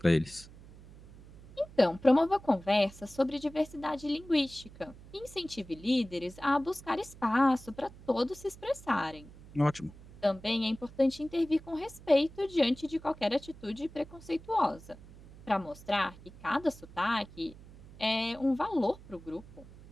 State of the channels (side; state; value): right; noise; hum, 19 dB below the sound